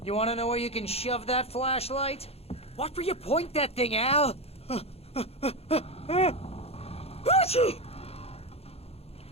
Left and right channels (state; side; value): late; right; 0.29 ms